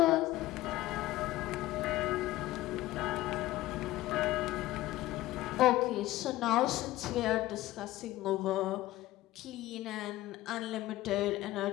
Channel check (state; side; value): quieter; right; 16.4 dB